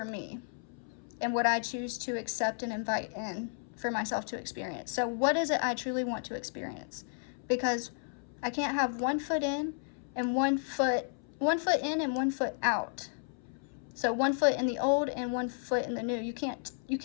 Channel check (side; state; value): right; silent; 56 dB below the other